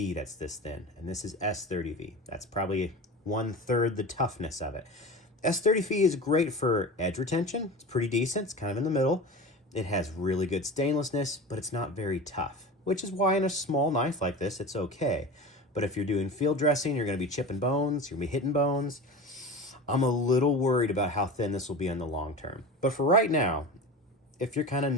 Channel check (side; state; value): both; normal; correlation 0.31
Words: that's this thin, and this is S30V. That's probably 1/3 the toughness of it. S30V is great for edge retention. It's pretty decent. It's kind of in the middle. It has really good stainlessness, but it's not very tough, which is why in a small knife like this, it's okay. But if you're doing field dressing, you're going to be chipping bones, you're going to be hitting bones. I'm a little worried about how thin this will be in the long term. But for right now, if you're kind of